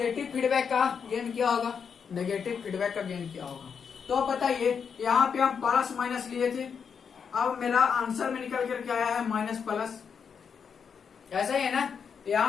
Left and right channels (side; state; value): right; quieter; 6.6 dB